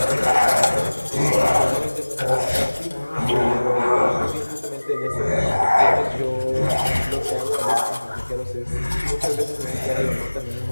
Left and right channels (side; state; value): both; inverted; correlation -1.00